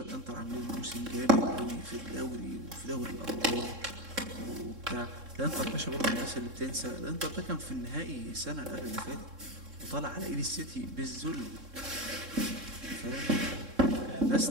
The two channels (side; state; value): left; late; 3.7 ms